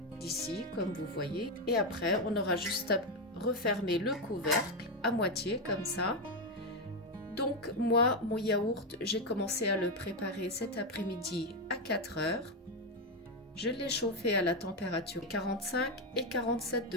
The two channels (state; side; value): normal; both; correlation 0.08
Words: d'ici, comme vous voyez. Et après, on aura juste à refermer le couvercle à moitié comme ça. Donc moi, mon yaourt, j'ai commencé à le préparer cet après-midi à 4 heures. Je l'ai chauffé à la température 45 et 47